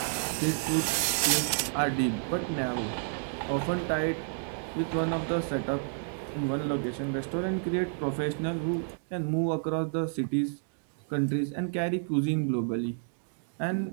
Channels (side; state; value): left; silent; digital silence